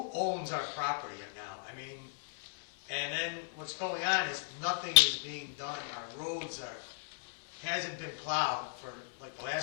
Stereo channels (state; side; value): silent; right; 54 dB below the other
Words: owns our property now? I mean, and then what's going on is nothing is being done. Our roads hasn't been plowed for like the